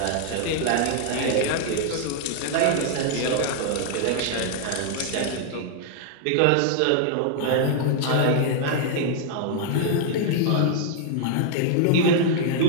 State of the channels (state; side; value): different; both; correlation 0.00